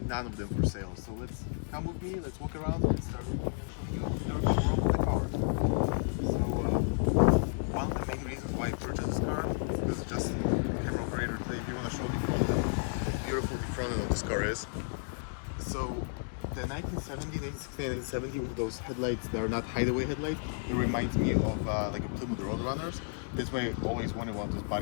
none of them for sale. So let's come with me, let's walk around and start looking and show you everything wrong with the car. So one of the main reasons why I purchased this car is because just the camera operator today, if you want to show the front, how beautiful the front of this car is. So the 1970, 1960, 1970 with those headlights that are not hideaway headlights, it reminds me of like a Plymouth Roadrunners. That's why I always wanted one of those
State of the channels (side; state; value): right; silent; digital silence